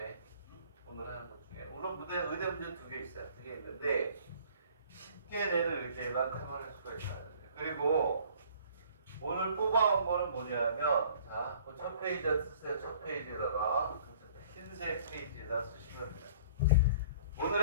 페이지에 쓰세요. 첫 페이지에다가 흰색 페이지에다 쓰시면 돼요.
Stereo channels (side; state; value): both; inverted; correlation -0.53